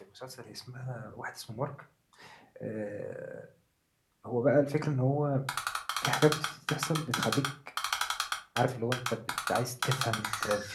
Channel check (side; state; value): both; identical; correlation 1.00